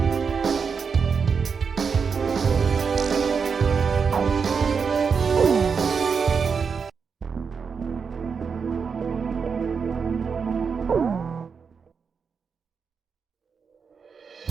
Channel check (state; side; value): quieter; left; 5.8 dB